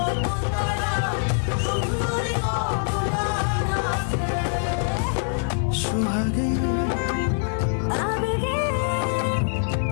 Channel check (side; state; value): right; silent; digital silence